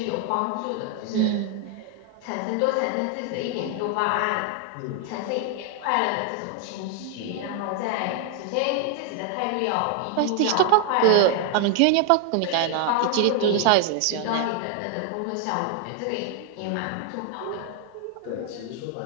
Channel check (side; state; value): both; different; correlation 0.00